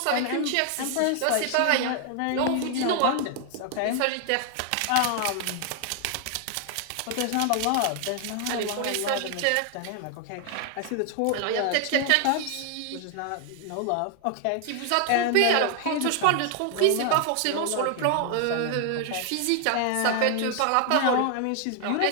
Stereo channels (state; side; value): different; both; correlation 0.00